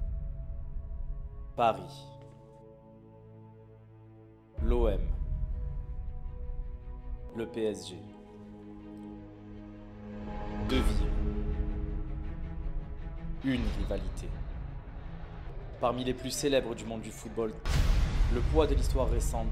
Paris, l'OM, le PSG. Deux villes, une rivalité. Parmi les plus célèbres du monde du football, le poids de l'histoire récente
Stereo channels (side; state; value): both; identical; correlation 1.00